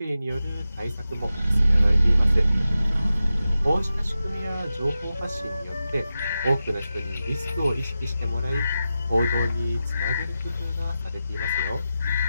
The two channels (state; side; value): inverted; both; correlation -0.91